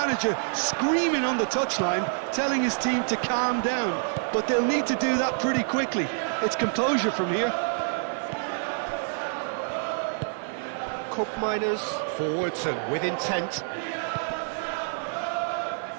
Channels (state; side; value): silent; left; digital silence